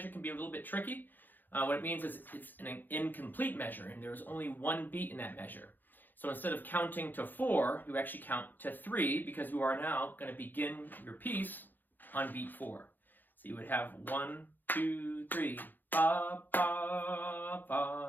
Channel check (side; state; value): right; late; 0.088 ms